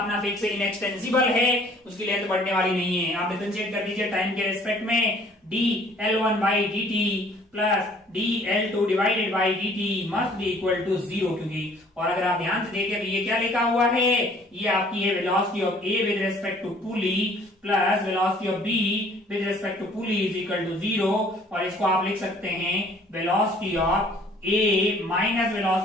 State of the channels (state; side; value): normal; both; correlation 0.56